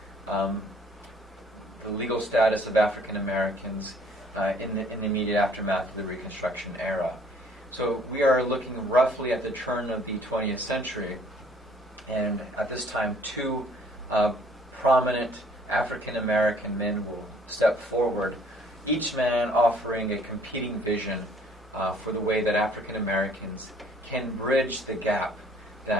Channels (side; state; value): both; normal; correlation 0.58